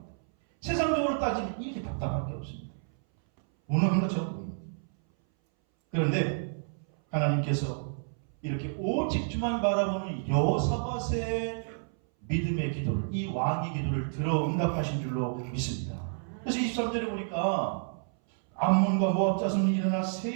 세상적으로 따지면 이렇게 답답할 게 없습니다. 무능한 것처럼 보입니다. 그런데 하나님께서 이렇게 오직 주만 바라보는 여호사밧의 믿음의 기도를, 이 왕의 기도를 들어 응답하신 줄로 믿습니다. 그래서 23절에 보니까 암몬과 모압 자손이 일어나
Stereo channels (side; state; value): left; silent; 58 dB below the other